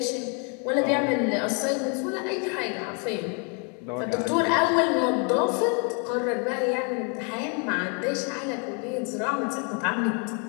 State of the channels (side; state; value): right; quieter; 37.3 dB